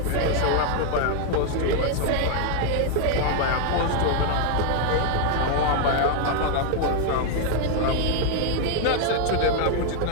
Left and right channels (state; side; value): different; both; correlation 0.00